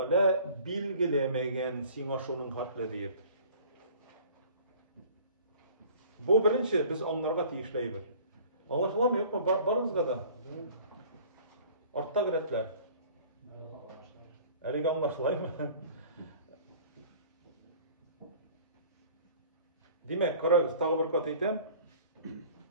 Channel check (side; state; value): both; inverted; correlation -0.49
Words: bilgilemegen sina şunun hatlı deyip. Bu birinci biz onlarga tiyişleybiz. Anlaşılan mı yok mu? Barınızga da. Artta giretler. Әлеге anlaşılay mı? Demek, karagız, tağı bir kat eytem.